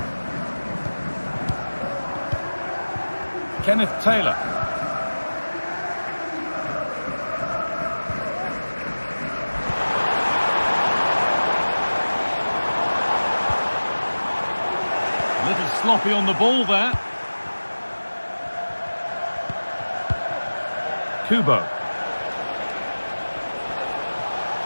Kenneth Taylor. A little sloppy on the ball there. Kubo.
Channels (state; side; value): inverted; both; correlation -1.00